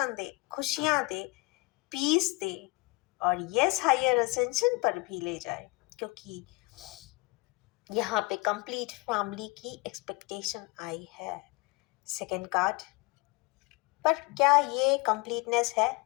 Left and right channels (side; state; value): right; quieter; 25.5 dB